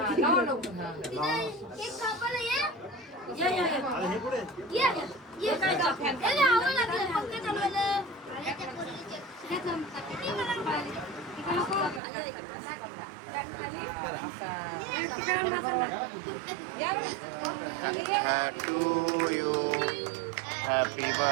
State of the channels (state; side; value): drops out; left; at 12.0 s